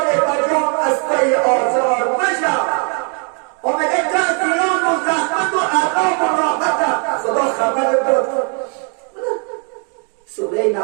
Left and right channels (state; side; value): quieter; left; 39.6 dB